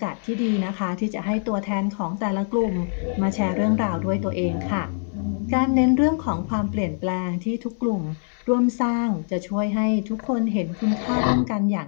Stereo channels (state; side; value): silent; right; 63 dB below the other